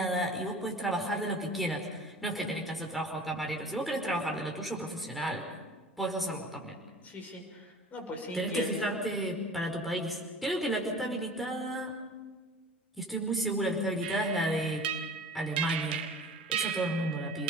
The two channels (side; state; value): both; normal; correlation 0.42